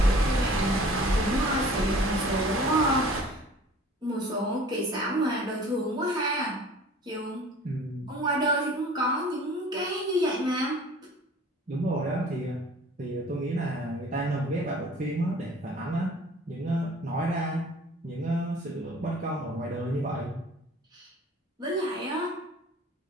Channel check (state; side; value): normal; both; correlation 0.48